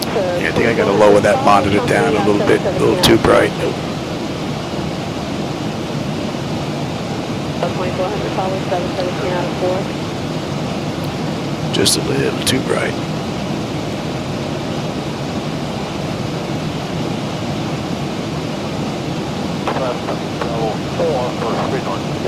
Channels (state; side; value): identical; both; correlation 1.00